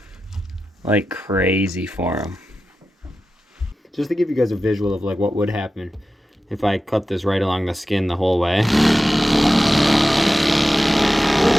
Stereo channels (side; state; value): both; normal; correlation 0.93